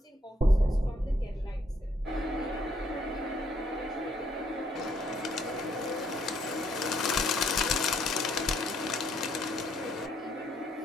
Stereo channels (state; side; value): normal; both; correlation 0.70